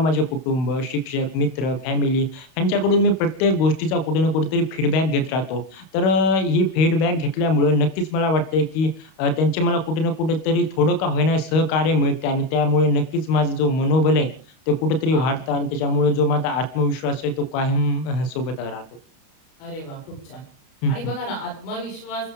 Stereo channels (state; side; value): late; right; 31 ms